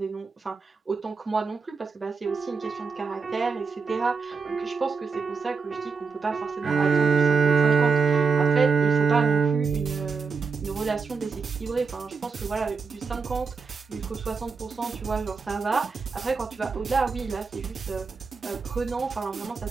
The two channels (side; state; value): left; quieter; 5.0 dB